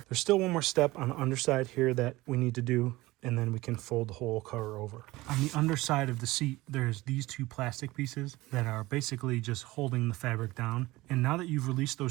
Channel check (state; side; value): quieter; left; 19.5 dB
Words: There's still one more step on the underside here that we need to do, and then we can fold the whole cover over. On the underside of the seat, there's these 2 plastic pieces that are basically just holding the fabric down. And now that you've released